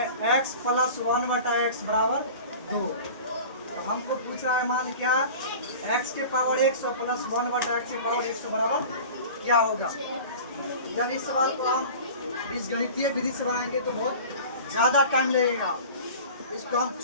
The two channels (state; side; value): inverted; both; correlation -0.39